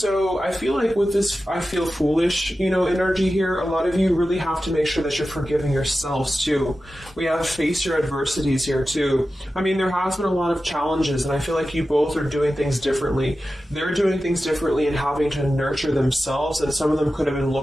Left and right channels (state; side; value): normal; both; correlation 0.93